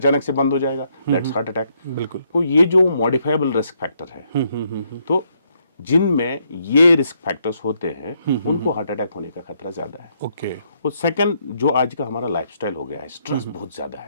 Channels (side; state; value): both; inverted; correlation -0.74